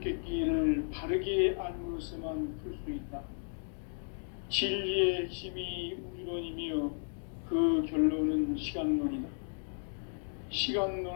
바르게 알므로서만 풀 수 있다. 진리의 핵심이 우주론이며 그 결론은 시간론이다.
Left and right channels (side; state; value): right; silent; digital silence